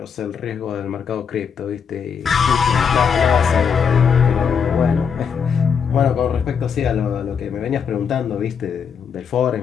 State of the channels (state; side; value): quieter; right; 6.8 dB